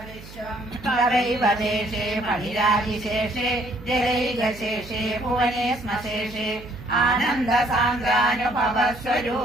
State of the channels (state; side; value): noise; right; hum, 17 dB below the sound